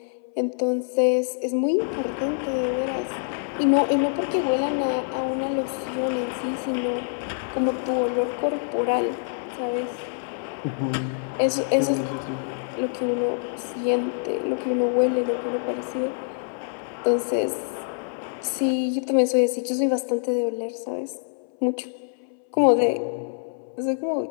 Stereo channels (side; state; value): right; silent; 61 dB below the other